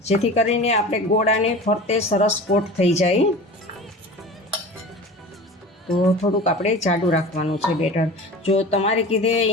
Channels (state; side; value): normal; both; correlation 0.36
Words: જેથી કરીને આપણે ગોળાને ફરતે સરસ કોટ થઈ જાય. તો થોડુંક આપણે જાડું રાખવાનું છે બેટર. જો તમારે કીધે